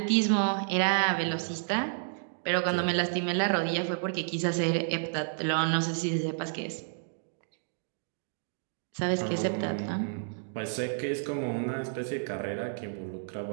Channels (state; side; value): silent; left; digital silence